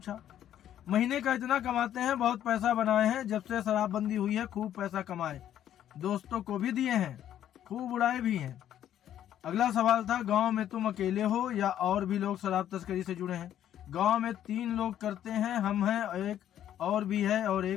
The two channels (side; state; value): right; quieter; 11.0 dB